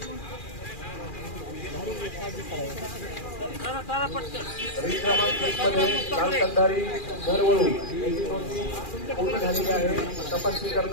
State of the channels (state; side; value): late; right; 2.4 ms